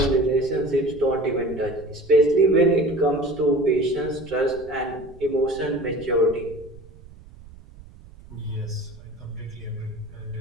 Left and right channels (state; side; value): noise; right; rumble, 20 dB below the sound